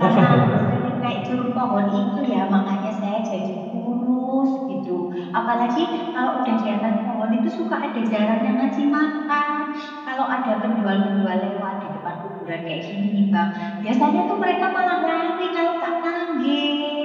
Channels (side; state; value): both; identical; correlation 1.00